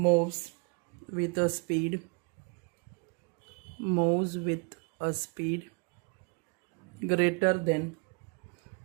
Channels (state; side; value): quieter; left; 32.5 dB